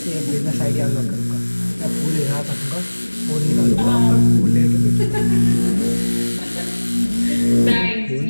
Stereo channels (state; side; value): inverted; both; correlation -1.00